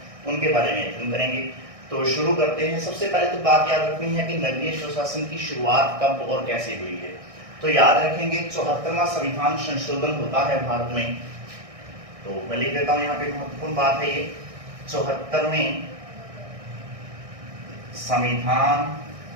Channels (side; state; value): left; late; 1.6 ms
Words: उनके बारे में अध्ययन करेंगे। तो शुरू करते हैं। सबसे पहले तो बात याद रखनी है कि नगरीय स्वशासन की शुरुआत कब और कैसे हुई है। तो याद रखेंगे 74वां संविधान संशोधन होता है भारत में। तो मैं लिख देता हूं, यहाँ पे महत्वपूर्ण बात है ये 74वें संविधान